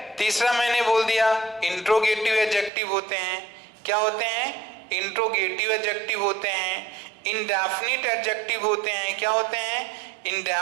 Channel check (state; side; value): drops out; left; at 2.7 s